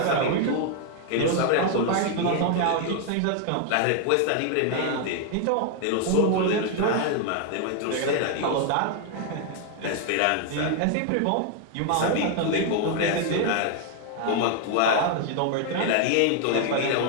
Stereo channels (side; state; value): both; different; correlation 0.00